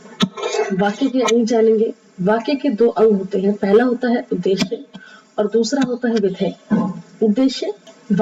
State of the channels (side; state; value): both; identical; correlation 1.00